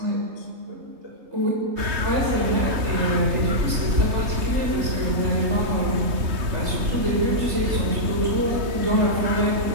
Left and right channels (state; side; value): late; left; 3.2 ms